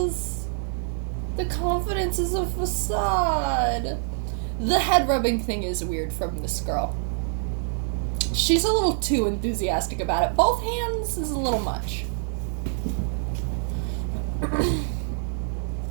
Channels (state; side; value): silent; left; 61 dB below the other